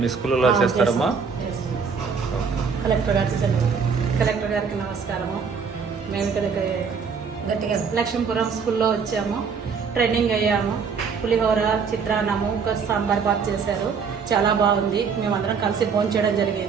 స్కూల్లో చేస్తారమ్మా? కలెక్టర్ గారికి నమస్కారము. మేము ఇక్కడ గట్టిగా లక్ష్మీపురం స్కూల్లో వచ్చాము. ట్రైనింగ్ అయ్యాము. పులిహోర, చిత్రాన్నము, ఇంకా సాంబార్ బాత్ చేశారు. చాలా బాగుంది. మేమందరం కలిసి భోజనం చేయడం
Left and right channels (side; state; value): left; quieter; 5.8 dB